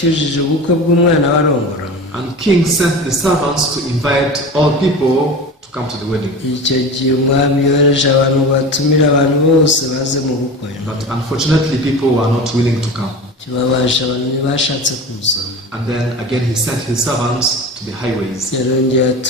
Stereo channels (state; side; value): normal; both; correlation 0.31